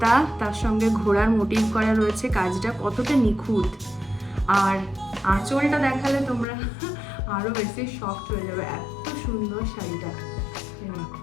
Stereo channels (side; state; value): right; drops out; at 6.5 s